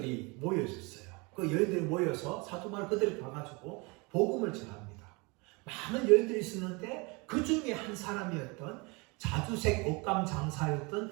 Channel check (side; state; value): left; quieter; 27.9 dB